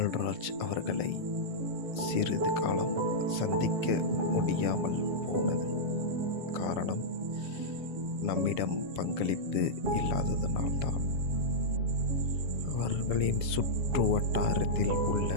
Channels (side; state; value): left; late; 7.5 ms